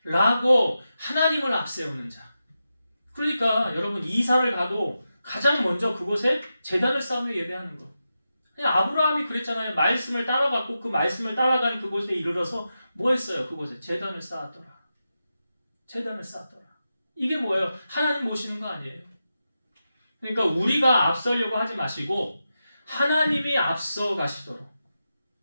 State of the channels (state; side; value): inverted; both; correlation -0.90